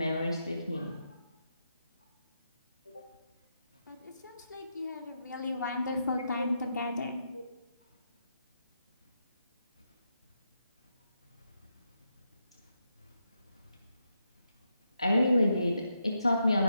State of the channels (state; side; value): inverted; both; correlation -0.83